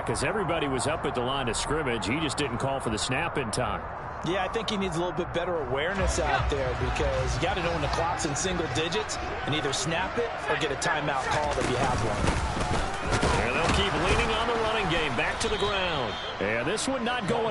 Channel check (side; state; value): both; identical; correlation 1.00